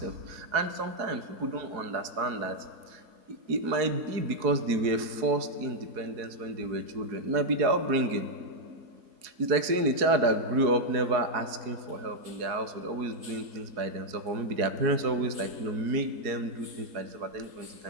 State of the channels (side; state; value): left; late; 4.7 ms